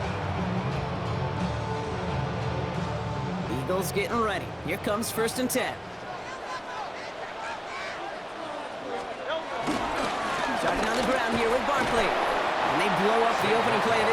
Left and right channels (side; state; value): both; identical; correlation 1.00